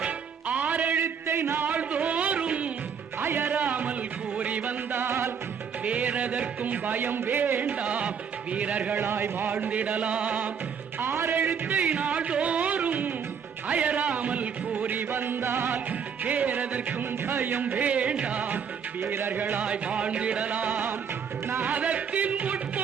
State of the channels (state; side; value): quieter; left; 6.9 dB